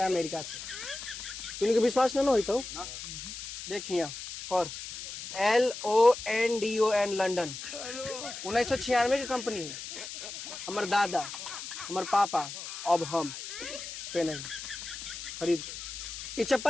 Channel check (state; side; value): noise; left; hiss, 9 dB below the sound